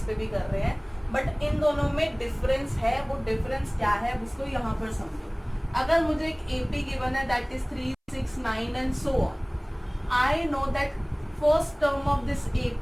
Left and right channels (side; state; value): both; identical; correlation 1.00